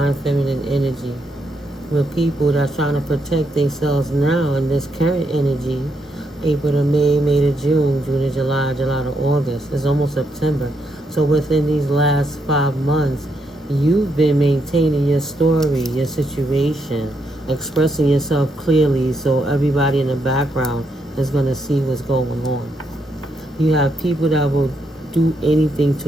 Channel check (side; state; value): both; normal; correlation 0.79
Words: feminine energy, with people that's trying to protect themselves now in this current energy. April to May, May to June, June to July, July to August. It's almost September. So within these last 5 months, you've been maintaining your story, your situation, expressing yourself clearly so everybody in the background is going to see what's going on. You have people that will do anything